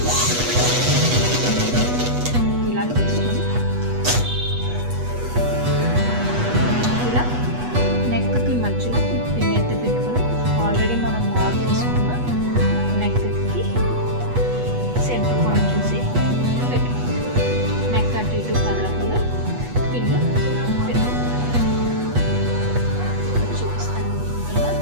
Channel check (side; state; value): left; late; 8.2 ms